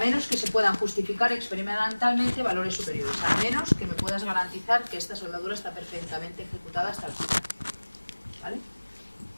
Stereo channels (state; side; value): inverted; both; correlation -1.00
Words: que se puedan justificar experimentalmente valores superiores, a menos que me puedas garantizar que esta soldadura está perfectamente ejecutada hasta el final, ¿vale?